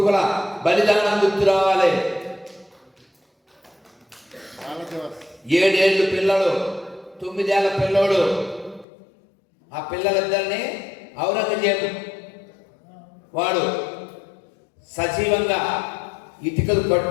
బలిదానం గుర్తు రావాలి. 7 ఏళ్ళు పిల్లలు, 9 ఏళ్ళ పిల్లోడు, ఆ పిల్లలిద్దరిని ఔరంగజేబు వాడు సజీవంగా ఇటుకలు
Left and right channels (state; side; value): drops out; right; at 8.8 s